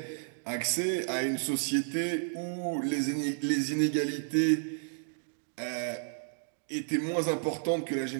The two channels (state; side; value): silent; left; digital silence